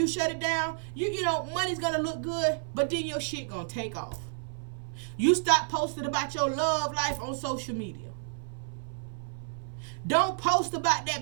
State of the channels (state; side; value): silent; left; 56 dB below the other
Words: shut it down? You know, money's going to look good, but then your shit going to take off. You stop posting about your love life on social media. Don't post about